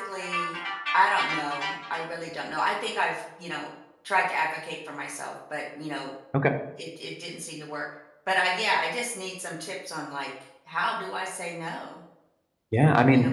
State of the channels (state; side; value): identical; both; correlation 1.00